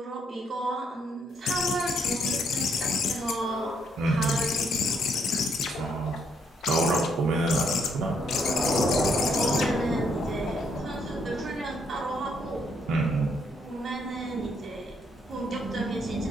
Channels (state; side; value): normal; both; correlation 0.72